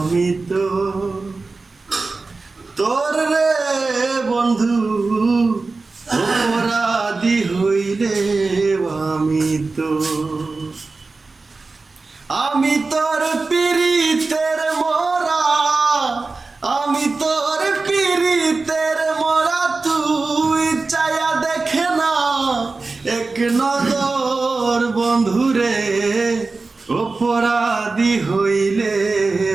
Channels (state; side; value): quieter; left; 3.8 dB